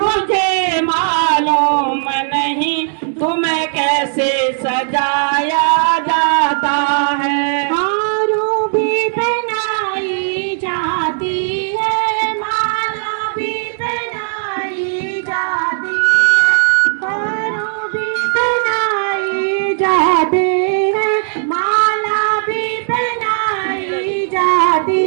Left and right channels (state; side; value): silent; left; digital silence